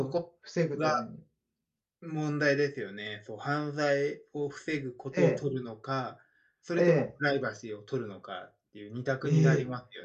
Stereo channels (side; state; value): both; identical; correlation 1.00